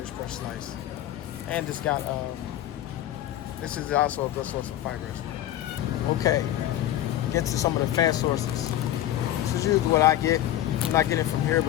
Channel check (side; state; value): right; quieter; 12.9 dB